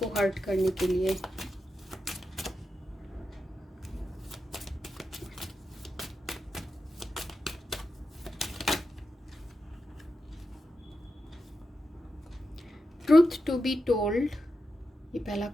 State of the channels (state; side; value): normal; both; correlation 0.89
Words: हर्ट करने के लिए। ट्रूथ टू बी टोल्ड, ये पहला